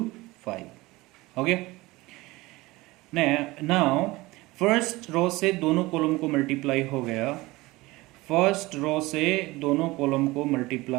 5, हो गया। नाउ फर्स्ट रो से दोनों कॉलम को मल्टीप्लाई हो गया, फर्स्ट रो से दोनों कॉलम को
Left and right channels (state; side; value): quieter; left; 20.7 dB